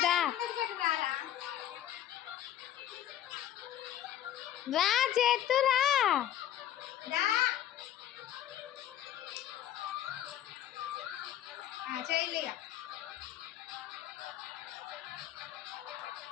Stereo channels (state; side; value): quieter; right; 11.6 dB